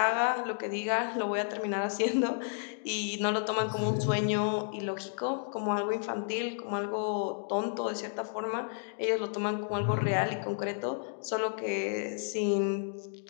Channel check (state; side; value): silent; right; digital silence